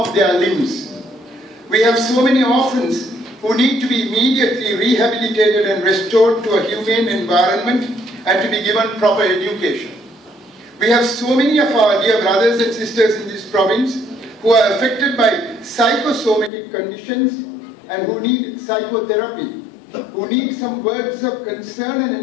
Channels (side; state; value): right; drops out; at 16.5 s